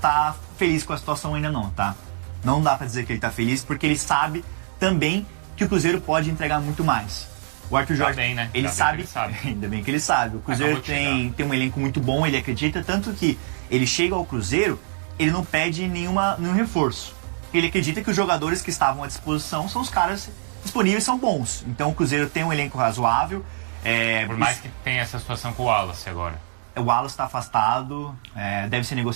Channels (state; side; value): silent; left; 63 dB below the other